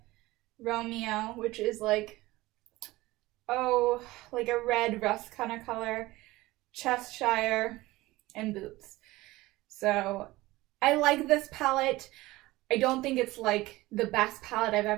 Romeo, which is like, oh, like a red rust kind of color, Cheshire, and Boots. So I like this palette. I don't think it's like the best palette I've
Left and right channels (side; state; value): left; quieter; 19.0 dB